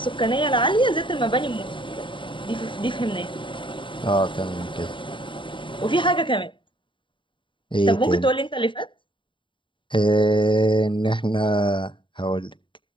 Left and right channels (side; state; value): right; late; 0.24 ms